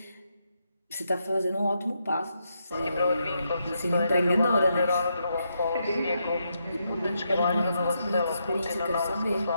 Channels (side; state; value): both; inverted; correlation -0.81